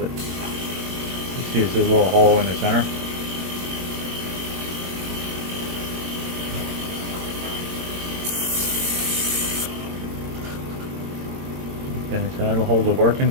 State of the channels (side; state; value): left; late; 22 ms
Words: You see there's a little hole in the center. Okay, so that'll hold the work